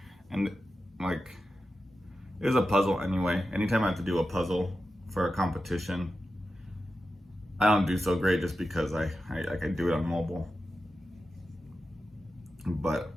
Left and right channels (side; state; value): both; normal; correlation 0.91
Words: And like, it was a puzzle anyway. Anytime I have to do a puzzle for a competition, I don't do so great just because I do it on mobile. But